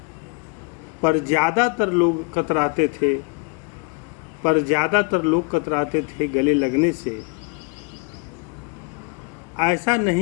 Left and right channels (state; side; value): quieter; right; 29.8 dB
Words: पर ज़्यादातर लोग कतराते थे गले लगने से। ऐसा